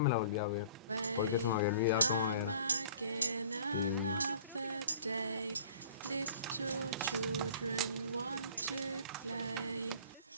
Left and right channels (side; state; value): both; inverted; correlation -0.49